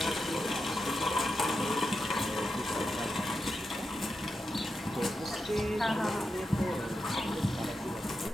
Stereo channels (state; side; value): normal; both; correlation 0.88